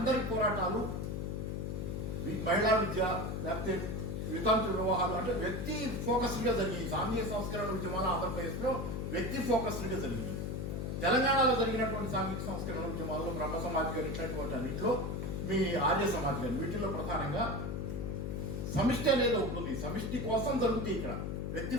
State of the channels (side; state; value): left; noise; hum, 3 dB below the sound